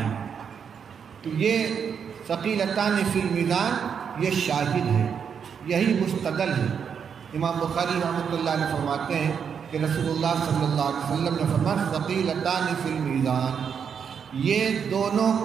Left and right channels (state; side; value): quieter; left; 7.1 dB